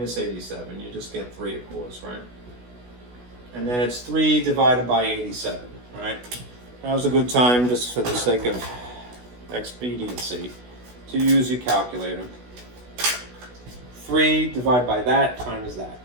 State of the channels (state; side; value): late; left; 16 ms